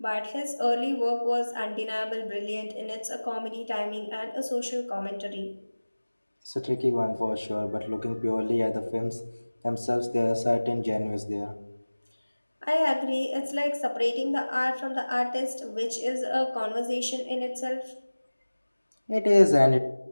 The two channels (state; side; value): inverted; both; correlation -1.00